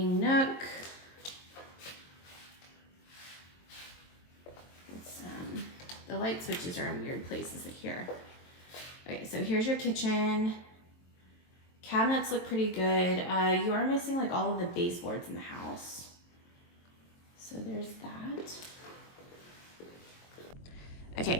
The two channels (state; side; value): late; right; 23 ms